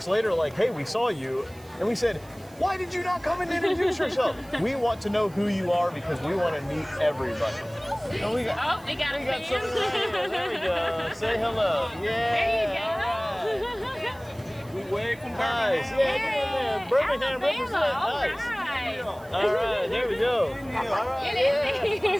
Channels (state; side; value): noise; right; hiss, 25 dB below the sound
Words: later like, hey, we saw you. And we said, why did you not come and introduce yourself? We want to know who you are because we want to meet everybody. And we got we got something right here. There we go. Say hello. Yeah. There you go. We wave from Birmingham. Nice. Yeah, Birmingham represent. Nice. All right, there we go. All right,